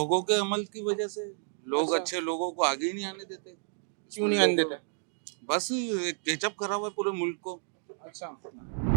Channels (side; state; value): left; silent; digital silence